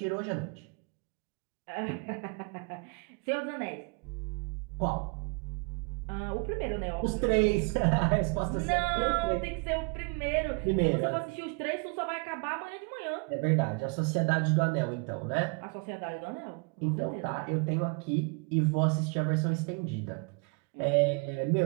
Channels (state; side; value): quieter; left; 33.5 dB